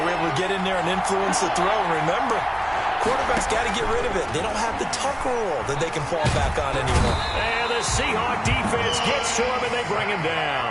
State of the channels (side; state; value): both; identical; correlation 1.00